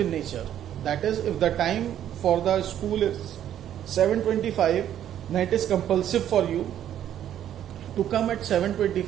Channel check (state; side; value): quieter; left; 10.8 dB